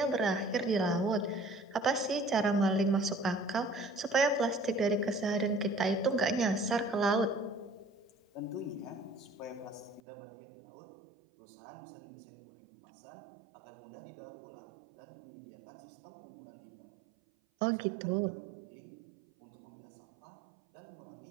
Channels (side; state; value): left; drops out; at 10.0 s